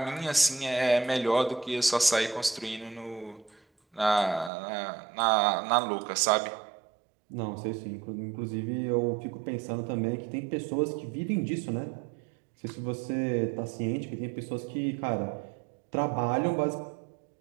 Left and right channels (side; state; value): left; drops out; at 4.5 s